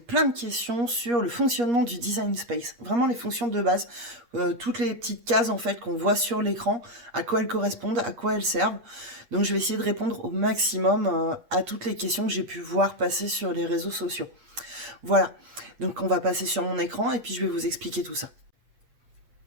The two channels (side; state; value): left; late; 8.5 ms